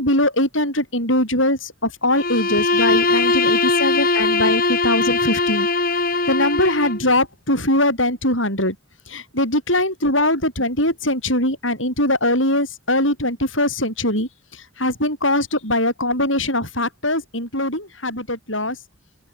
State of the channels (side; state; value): both; normal; correlation -0.07